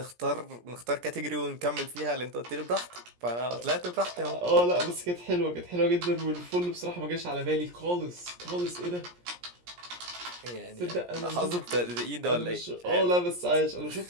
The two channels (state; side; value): late; left; 17 ms